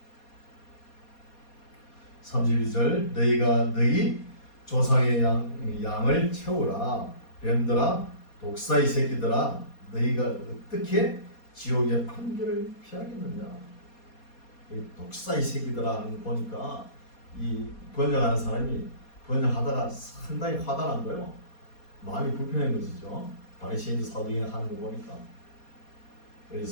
32절 너희가 너희 조상의 양을 채우라. 뱀들아 독사의 새끼들아 너희가 어떻게 지옥의 판결을 피하겠느냐. 이 독사의 새끼들아 하는 거 보니까 이 번역하는 사람이 번역하다가 상당히 화가 난 거예요. 마음이 불편한 것이죠. 바리새인 사도행전 하는 거 보니까.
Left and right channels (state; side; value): late; right; 4.2 ms